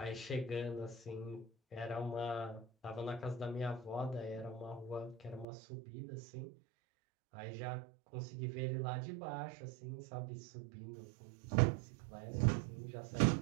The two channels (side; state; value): left; drops out; at 5.5 s